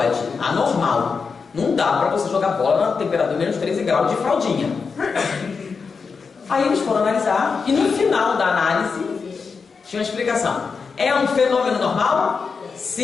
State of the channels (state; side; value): quieter; right; 5.2 dB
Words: Anormal. Não dá para você jogar bola na temperatura de menos 13 graus de fraldinha. Aí eles foram analisar e no final da análise tinha uma explicação. É um fenômeno normal?